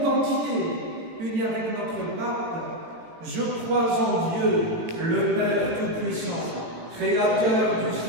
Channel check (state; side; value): late; left; 18 ms